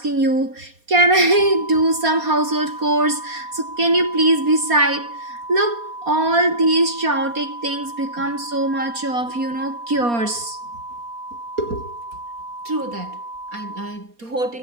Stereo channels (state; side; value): late; left; 4.2 ms